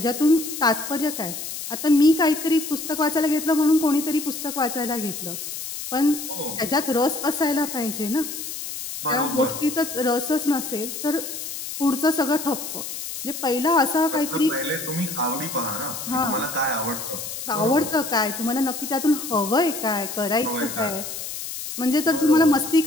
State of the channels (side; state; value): left; noise; hiss, 7 dB below the sound